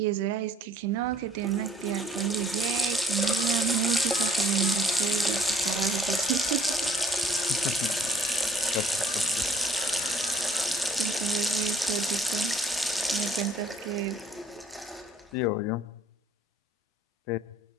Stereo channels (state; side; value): normal; both; correlation 0.61